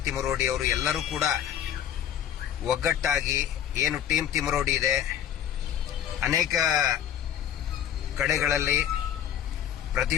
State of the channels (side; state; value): right; quieter; 9.9 dB